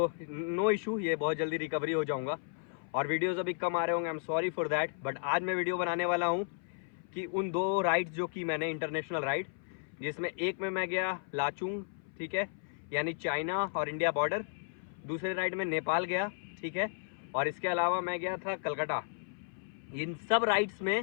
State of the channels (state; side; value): silent; right; 55 dB below the other